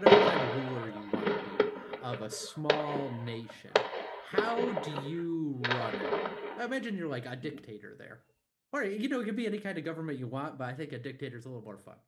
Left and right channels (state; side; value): identical; both; correlation 1.00